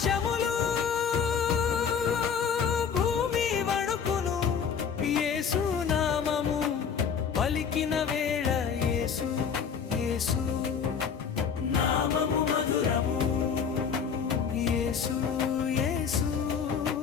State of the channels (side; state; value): right; quieter; 6.8 dB